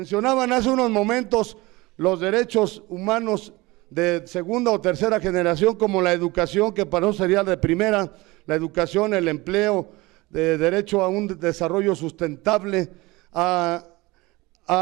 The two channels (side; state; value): left; quieter; 21.9 dB